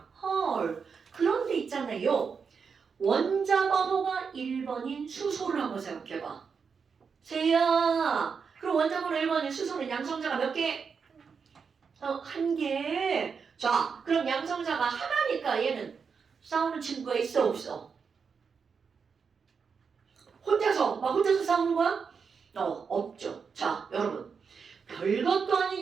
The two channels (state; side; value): quieter; left; 5.8 dB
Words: 헐, 그런데 있잖아요. 원자 번호가 1번인 수소를 한번 생각해봐. 세야, 그럼 원자 번호 1번인 수소는 양성자가 몇 개? 한 개. 자, 그럼 양성자가 하나니까 얘는 싸우는 친구가 있어 없어? 혼자서 싸우는 거야? 없죠. 자, 여러분. 별것도